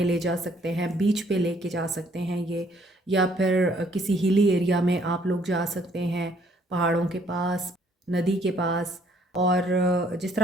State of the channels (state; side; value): normal; both; correlation 0.64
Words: ले जा सकते हैं, बीच पे लेके जा सकते हैं ये, या फिर किसी हिली एरिया में आप लोग जा सकते हैं, पहाड़ों के पास, नदी के पास। और जिस